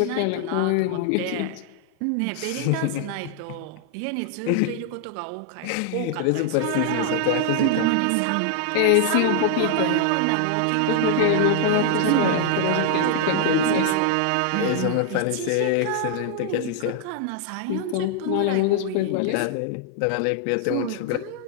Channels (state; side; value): different; both; correlation 0.00